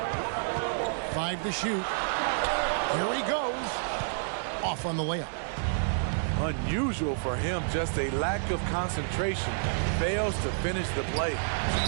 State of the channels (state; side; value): silent; left; digital silence